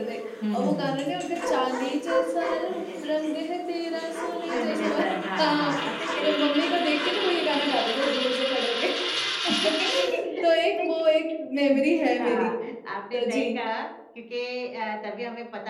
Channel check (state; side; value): identical; both; correlation 1.00